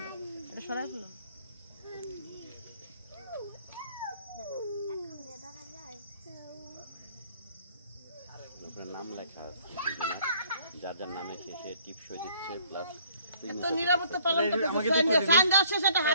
এটা সরে রাখো উপরে নাম লেখা আছে যার যার নামে শেষে টিপস হয়ে দিচ্ছে প্লাস তো নিরাপত্তা পালন করতে সাইন দাও সেটা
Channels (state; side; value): inverted; both; correlation -0.59